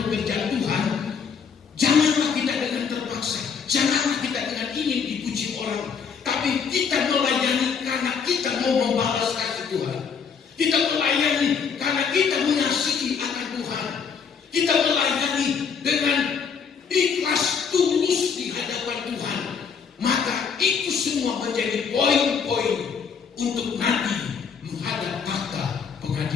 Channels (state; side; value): quieter; right; 6.3 dB